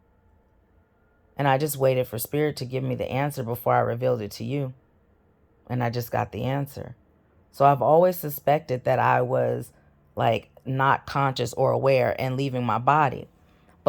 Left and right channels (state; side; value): identical; both; correlation 1.00